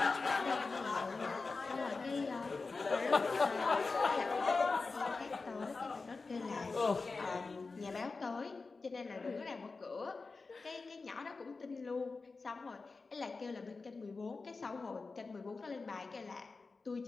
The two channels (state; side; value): quieter; right; 4.1 dB